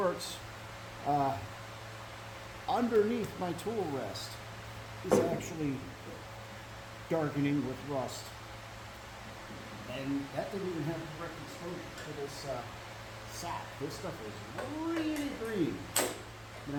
underneath my tool rest is actually darkening with rust. And that didn't even have direct exposure to this sap. This stuff is really green. I'm gonna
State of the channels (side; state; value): both; identical; correlation 1.00